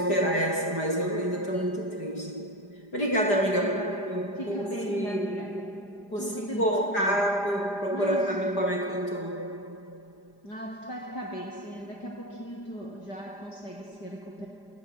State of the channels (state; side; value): late; right; 5.0 ms